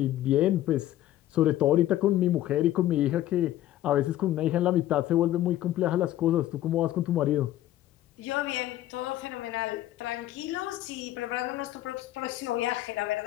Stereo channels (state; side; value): quieter; right; 13.8 dB